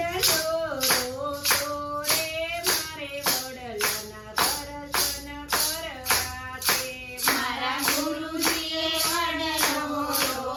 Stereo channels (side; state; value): both; identical; correlation 1.00